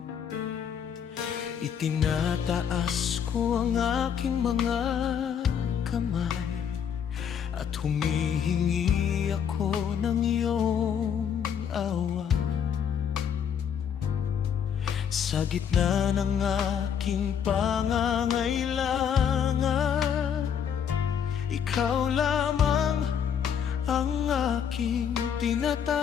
Itinataas ko ang aking mga kamay at humihingi ako ng iyong awa. Sa gitna ng aking pangangailangan, ikaw lamang ang aking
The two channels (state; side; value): quieter; right; 8.1 dB